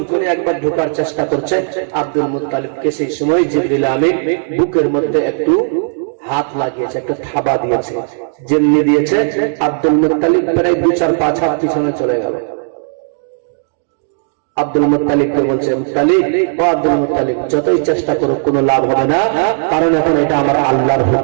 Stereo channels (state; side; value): silent; left; digital silence